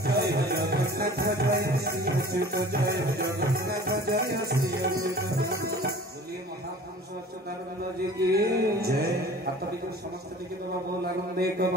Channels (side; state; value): both; normal; correlation 0.45